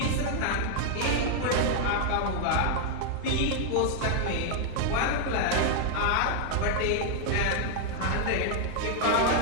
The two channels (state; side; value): different; both; correlation 0.00